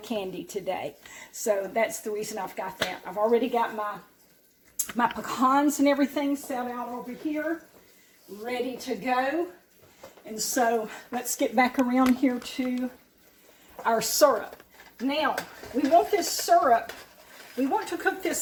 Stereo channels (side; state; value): both; identical; correlation 1.00